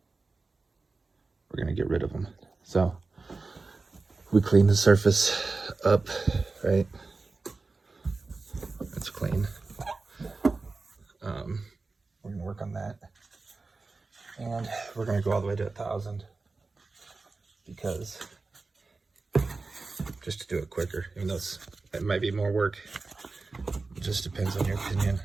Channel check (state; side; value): quieter; left; 3.8 dB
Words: We're gonna get rid of them. So we clean the surface up, right? It's clean. We're gonna work on that. And we're gonna go all the way to 1,000 because just to do it quicker, even though it might be more work. It just depends on your opinion